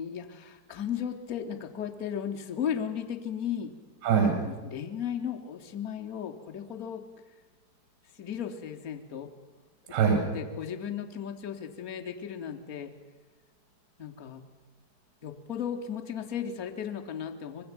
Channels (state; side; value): late; left; 4.3 ms